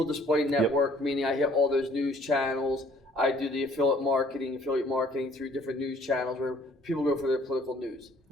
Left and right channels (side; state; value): both; normal; correlation 0.59